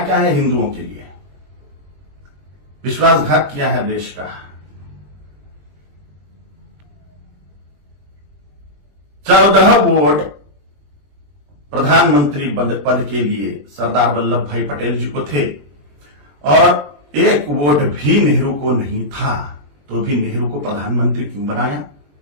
क्या है हिंदुओं के लिए? विश्वासघात किया है देश का। 14 वोट प्रधानमंत्री पद के लिए सरदार वल्लभ भाई पटेल जी को थे और 1 वोट भी नेहरू को नहीं था, तो भी नेहरू को प्रधानमंत्री क्यों बनाया?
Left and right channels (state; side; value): late; left; 21 ms